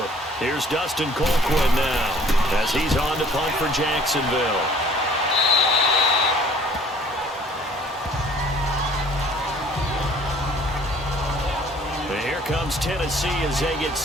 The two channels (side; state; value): both; normal; correlation 0.54